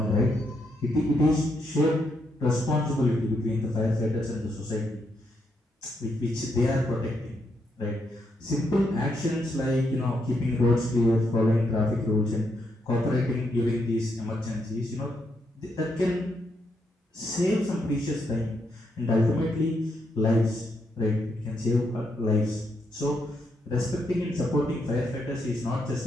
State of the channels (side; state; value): both; normal; correlation 0.78